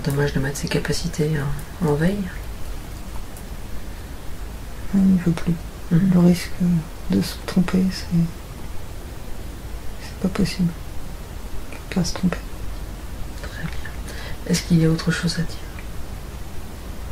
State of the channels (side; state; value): both; identical; correlation 1.00